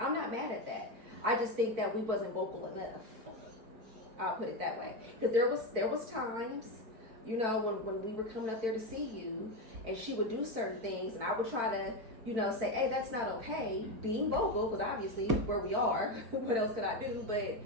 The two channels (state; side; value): late; left; 4.5 ms